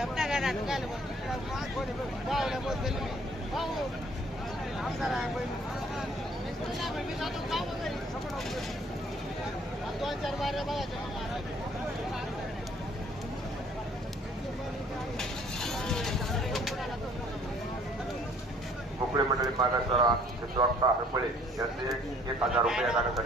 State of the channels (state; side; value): normal; both; correlation 0.58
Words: अपना गाना निकाल दोन चार बारे बघायचे. मोकळे मंडळी मागासरा हरपळे यांचे 1000 रुपये या